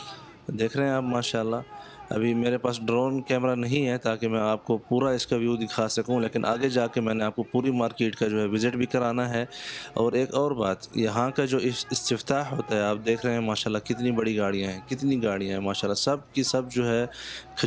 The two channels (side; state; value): both; identical; correlation 1.00